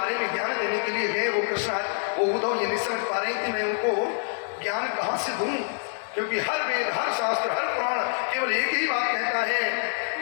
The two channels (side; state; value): right; silent; digital silence